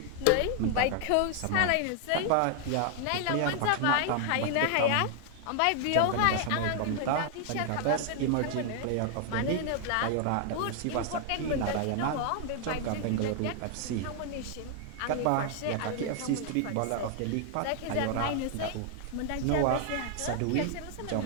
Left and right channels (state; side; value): different; both; correlation 0.00